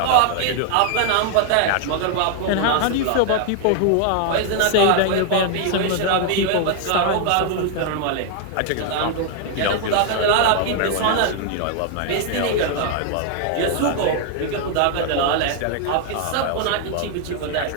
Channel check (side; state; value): both; different; correlation 0.00